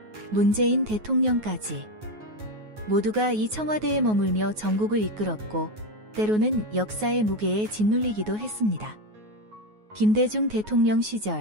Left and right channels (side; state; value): left; late; 9.4 ms